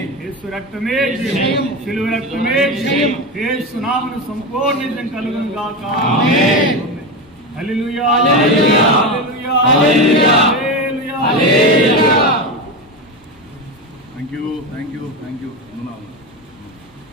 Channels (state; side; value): normal; both; correlation 0.18